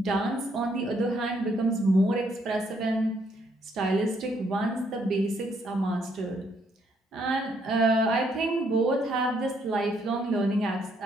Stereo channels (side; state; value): both; normal; correlation 0.71